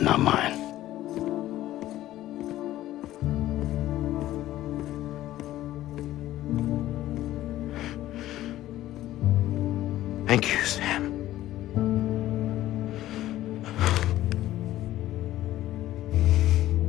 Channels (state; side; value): quieter; right; 14.5 dB